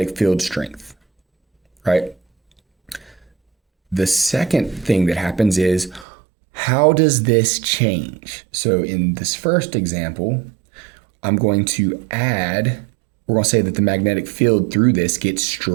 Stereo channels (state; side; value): drops out; left; at 6.1 s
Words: field strength, right? The second thing that happens is How does this change? So in this first example, I'm going to add, we're going to say that the magnetic field through this gets